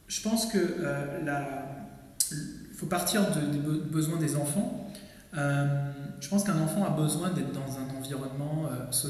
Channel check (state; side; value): identical; both; correlation 1.00